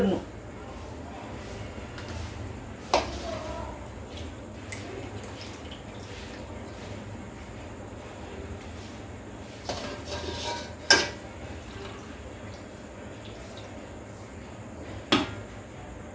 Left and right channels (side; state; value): both; identical; correlation 1.00